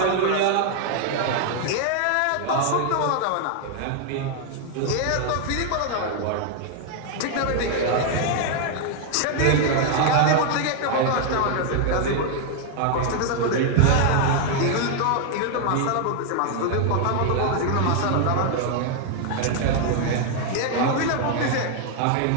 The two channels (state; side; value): different; both; correlation 0.00